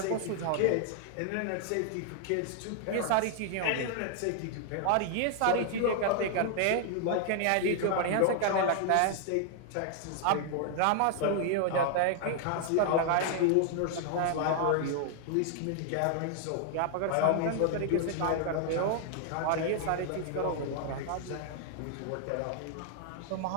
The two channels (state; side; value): different; both; correlation 0.00